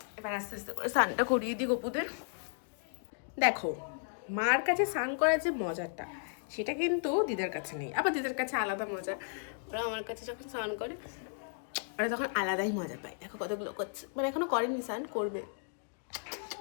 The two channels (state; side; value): silent; right; digital silence